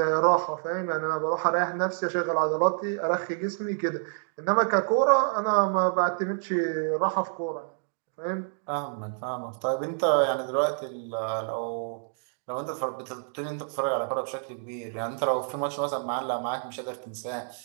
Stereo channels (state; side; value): silent; left; digital silence